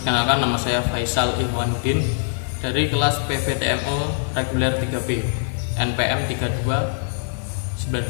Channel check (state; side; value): silent; right; 64 dB below the other